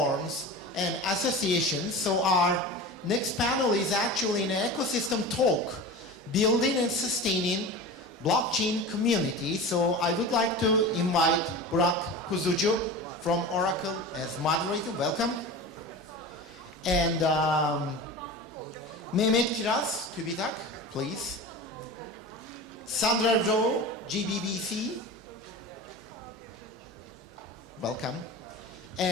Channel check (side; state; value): both; normal; correlation 0.31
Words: and associations. So our next panel is actually an ecosystem talk, building and sustaining blockchain community. So I would like to invite Burak Kuzucu from Oracle as moderator. Welcome. And Mehmet Kiraz, TÜBİTAK, please. Sandra Rowe, GBBC. Welcome.